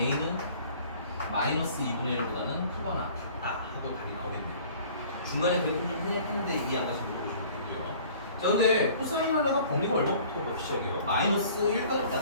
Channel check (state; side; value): inverted; both; correlation -0.50